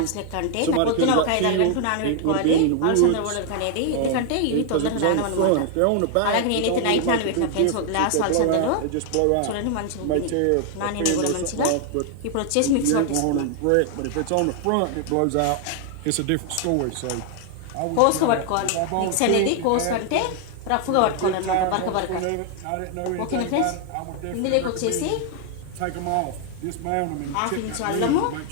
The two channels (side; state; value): both; different; correlation 0.00